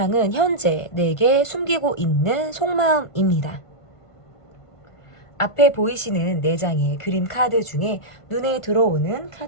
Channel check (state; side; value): late; right; 1.5 ms